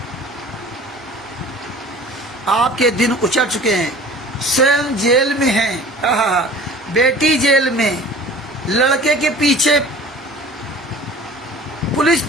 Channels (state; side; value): normal; both; correlation 0.44